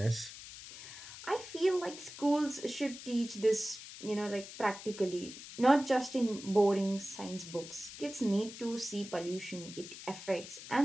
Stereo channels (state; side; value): noise; left; hiss, 13 dB below the sound